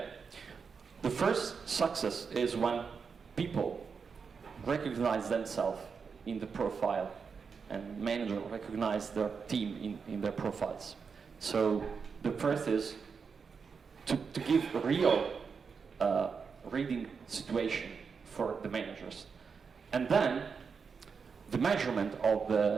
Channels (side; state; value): left; quieter; 5.7 dB